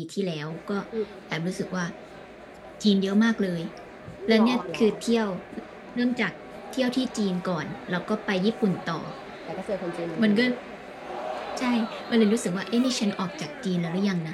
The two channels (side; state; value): both; identical; correlation 1.00